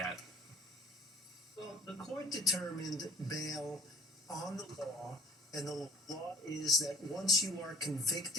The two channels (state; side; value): normal; both; correlation 0.50